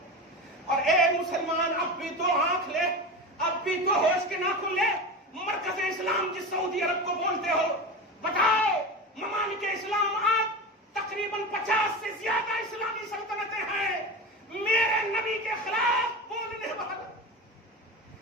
اور اے مسلمان، اب بھی تو آنکھ لے، اب بھی تو ہوش کے ناخن لے۔ مرکز اسلام جس سعودی عرب کو بولتے ہو، بتاؤ ممالک اسلام آج تقریباً 50 سے زیادہ اسلامی سلطنتیں ہیں، میرے نبی کے خلاف بولنے والا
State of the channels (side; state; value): both; normal; correlation 0.26